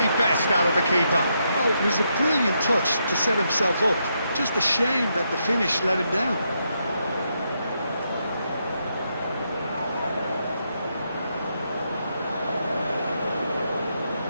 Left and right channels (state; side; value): inverted; both; correlation -0.80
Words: best out of the keeper. Oh, it was a brilliant touch to set himself up. Just a shame that the finish let him down.